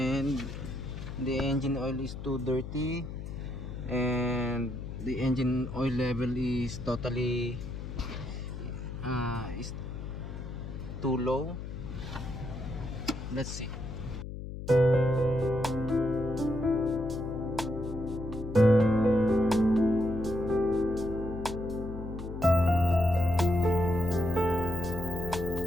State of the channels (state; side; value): noise; left; hum, 8 dB below the sound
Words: the engine oil is too dirty, and the engine oil level is totally is too low. Let's see.